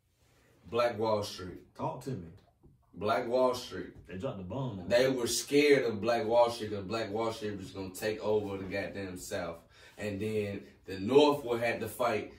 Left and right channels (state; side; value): identical; both; correlation 1.00